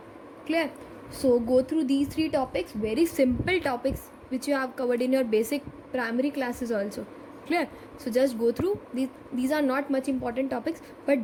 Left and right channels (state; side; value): identical; both; correlation 1.00